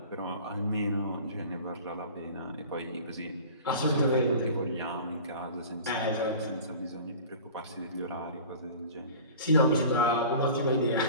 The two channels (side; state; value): both; inverted; correlation -0.40